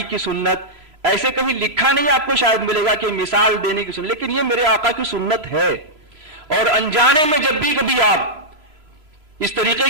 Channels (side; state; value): left; late; 3.0 ms